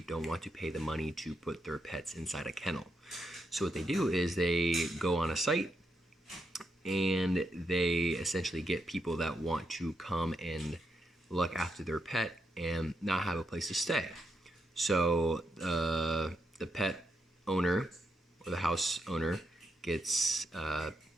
don't want to pay the money to put their pets inside a kennel. So, what they do is they go on a site and they essentially get people that want to come and look after their pet and not have a place to stay. So the pet owner or the house owner gets,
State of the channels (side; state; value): both; normal; correlation 0.81